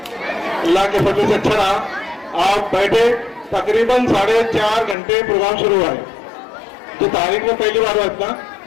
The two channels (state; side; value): drops out; right; at 5.0 s